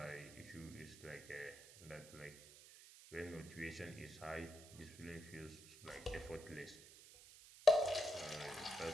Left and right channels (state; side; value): noise; right; hiss, 17 dB below the sound